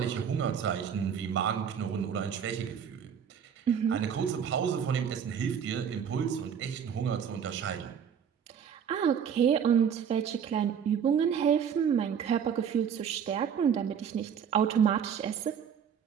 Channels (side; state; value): left; quieter; 7.8 dB